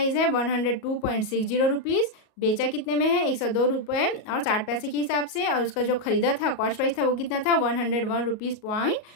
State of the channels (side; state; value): right; late; 38 ms